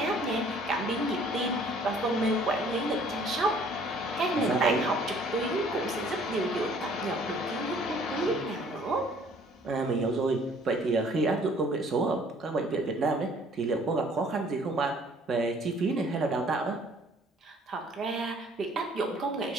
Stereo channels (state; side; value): normal; both; correlation 0.57